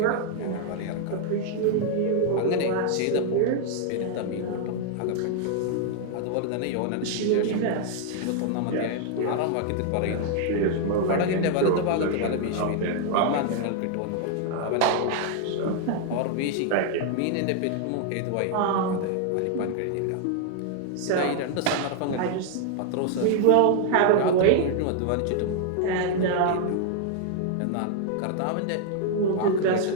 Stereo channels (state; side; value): different; both; correlation 0.00